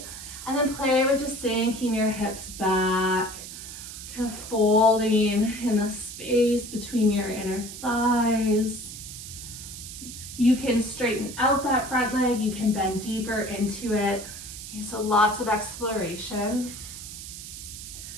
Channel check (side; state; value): right; noise; hiss, 11 dB below the sound